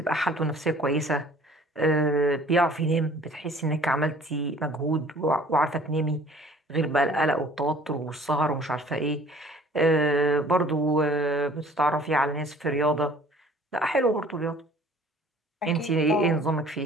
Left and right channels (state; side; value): normal; both; correlation 0.52